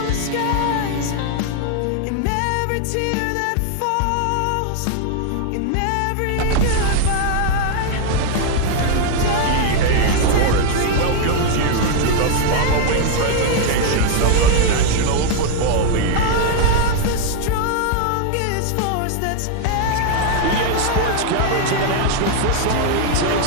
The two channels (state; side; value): different; both; correlation 0.00